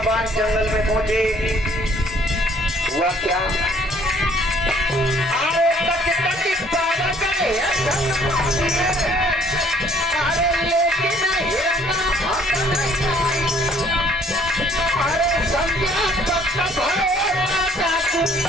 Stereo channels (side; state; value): both; normal; correlation 0.60